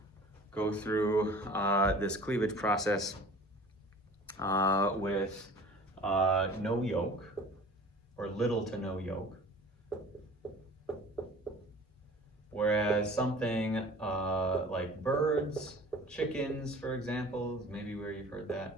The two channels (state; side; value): normal; both; correlation 0.45